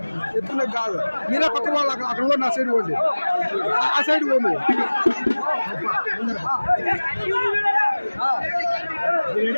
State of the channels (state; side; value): inverted; both; correlation -1.00